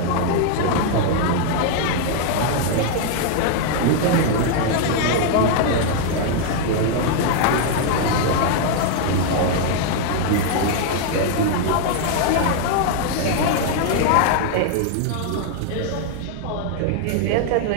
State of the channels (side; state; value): both; different; correlation 0.00